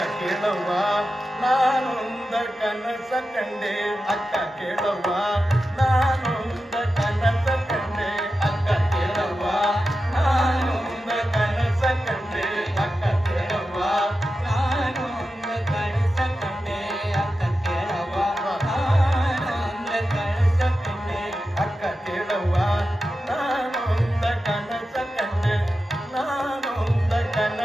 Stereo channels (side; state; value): both; normal; correlation 0.91